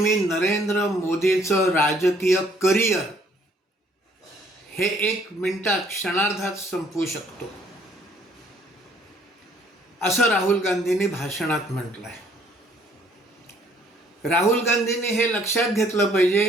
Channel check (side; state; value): both; normal; correlation 0.62